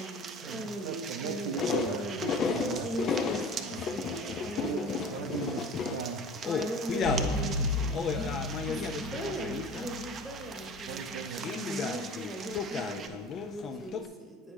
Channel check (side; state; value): both; normal; correlation 0.40